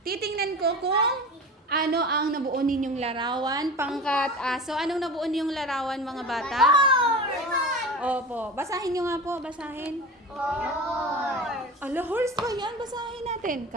Titingnan ko kung ano ang nabuo ninyong larawan. Pangkat aso. Anong nabuo ninyong larawan, mga bata? Opo. Basahin nyo nga po. Basahin. Ala, horse ba yan? Basahin natin.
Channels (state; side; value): normal; both; correlation 0.32